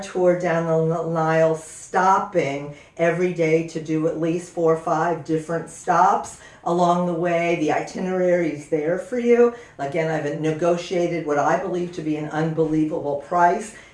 tour down the Nile, stopping every day to do at least 4 or 5 different stops along the way. The itinerary is there for you. Again, I've negotiated what I believe to be an unbelievable price.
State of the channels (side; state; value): both; identical; correlation 1.00